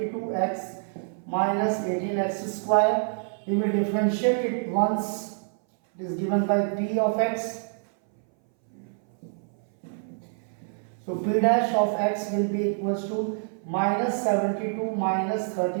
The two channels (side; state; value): left; silent; 60 dB below the other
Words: minus 18x square. We will differentiate it once it is given by p of x. So p dash of x will be equals to minus 72 minus